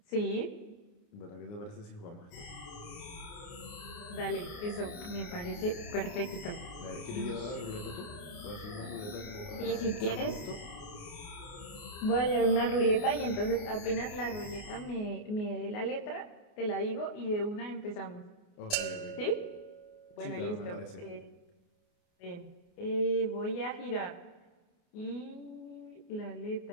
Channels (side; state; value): right; late; 28 ms